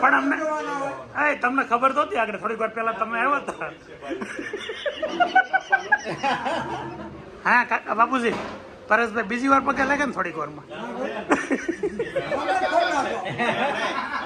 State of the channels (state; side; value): identical; both; correlation 1.00